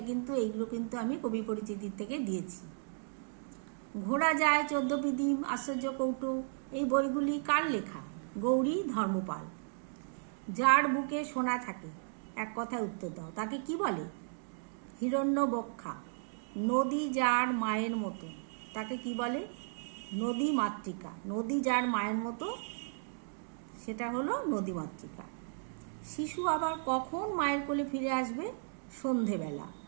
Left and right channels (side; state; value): left; silent; digital silence